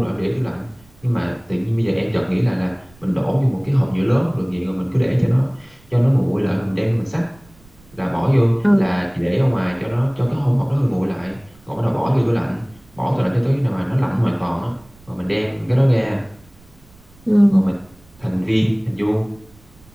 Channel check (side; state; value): right; noise; rumble, 27 dB below the sound